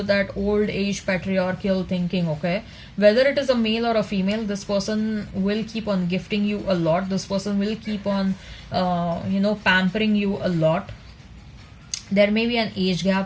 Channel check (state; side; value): identical; both; correlation 1.00